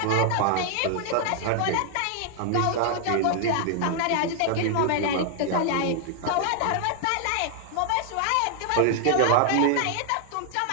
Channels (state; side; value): different; both; correlation 0.00